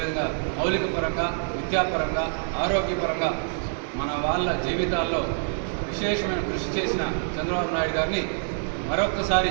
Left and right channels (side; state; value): left; silent; digital silence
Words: మౌలిక పరంగా, విద్యాపరంగా, ఆరోగ్యపరంగా మన వాళ్ళ జీవితాల్లో విశేషమైన కృషి చేసిన చంద్రబాబు నాయుడు గారిని మరొక్కసారి